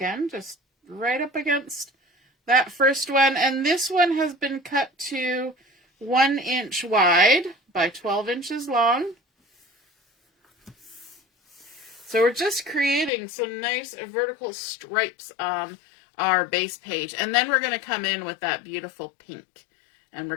just right up against that first one. And this one has been cut to 1 inch wide by 12 inches long. So we're just creating some nice vertical stripes on our base page. And then we're going to come in with that beautiful pink. And we're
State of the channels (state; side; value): drops out; right; at 13.1 s